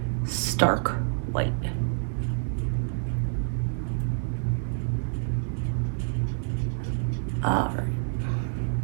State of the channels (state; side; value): silent; left; digital silence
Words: stark white. All right.